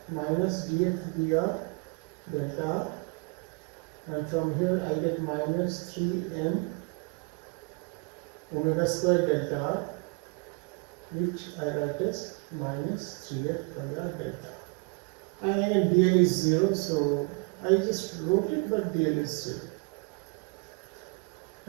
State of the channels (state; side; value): quieter; left; 32.6 dB